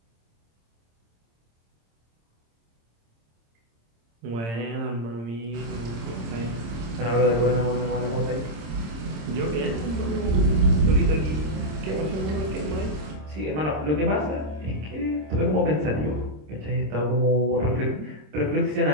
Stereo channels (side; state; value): left; late; 26 ms